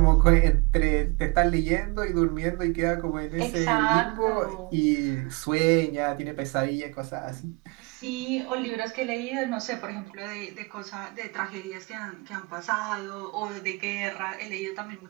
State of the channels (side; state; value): left; quieter; 27.9 dB